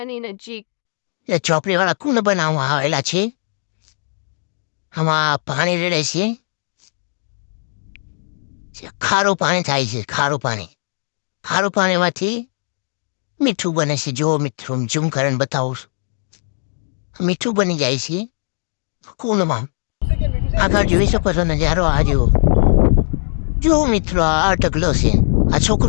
નજીક એ ચોપડીવાળા કોણ બનાવવા આવેલા છે? આમાં પાણી રેડે છે, ખારું પાણી થાય છે. ખારું પાણીમાંથી મીઠું બને છે. જો મિત્રો ઝૂમ કરીને બતાવું છું. મીઠું બની જાય છે કુંડમાં. આગળ જોઈ શકો છો નજારો આ જેવો. જો મિત્રો આ ઢગલો છે, આ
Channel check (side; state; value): right; silent; digital silence